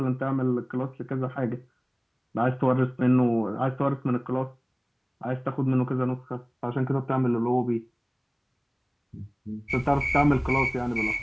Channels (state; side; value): identical; both; correlation 1.00